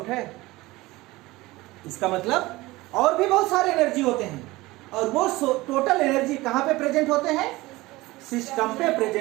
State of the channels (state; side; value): quieter; left; 19.9 dB